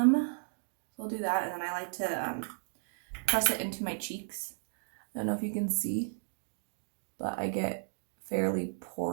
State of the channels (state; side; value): silent; left; digital silence